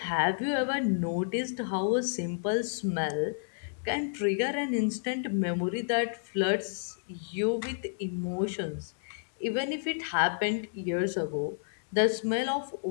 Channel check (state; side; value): silent; right; digital silence